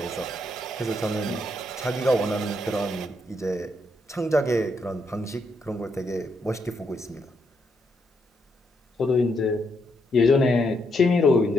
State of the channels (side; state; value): both; normal; correlation 0.77